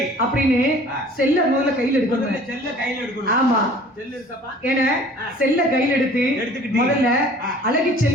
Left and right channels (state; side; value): normal; both; correlation 0.49